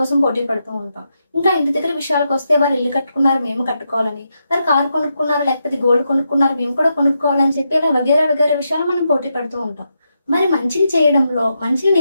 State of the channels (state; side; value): inverted; both; correlation -0.84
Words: పోటీ పడుతూ ఉంటాం. ఇంకా ఇంటి దగ్గర విషయాలకొస్తే వాళ్ళు ఇల్లు కట్టుకున్నారు మేము కట్టుకోవాలని, వారు కారు కొనుక్కున్నారు లేకపోతే గోల్డ్ కొనుక్కున్నారు మేము కూడా కొనుక్కోవాలని చెప్పి ఇలా వగైరా వగైరా విషయాలు మనం పోటీ పడుతూ ఉంటాం. మరి మంచిని చేయడంలో, మంచిని